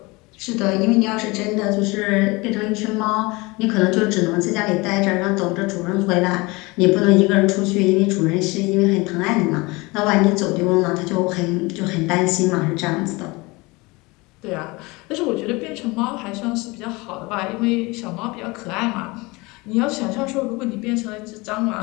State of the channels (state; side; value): quieter; right; 24.3 dB